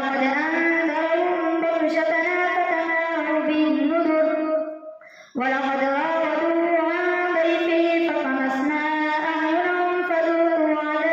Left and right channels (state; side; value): identical; both; correlation 1.00